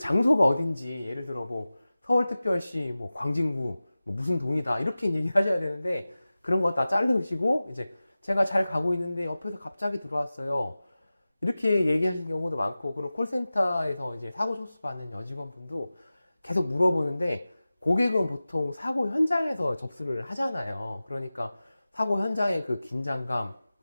어딘지 예를 들어 뭐 서울특별시 뭐 광진구 뭐 무슨 동이다 이렇게 얘기하셔야 되는데 그런 거 다 자르시고 이제 제가 잘 가고 있는데 옆에서 갑자기 들어왔어요. 이렇게 얘기하시는 경우도 많고 그리고 콜센터에서 이제 사고 접수받는 여직원분도 계속 물어보는데 고객은 보통 사고 현장에서 접수를 하잖아요. 그러니까 사고 현장의 그 긴장감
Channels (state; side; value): inverted; both; correlation -0.96